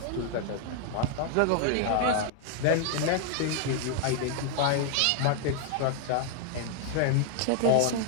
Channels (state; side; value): different; both; correlation 0.00